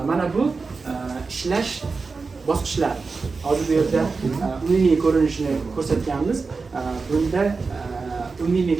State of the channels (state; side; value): quieter; left; 4.4 dB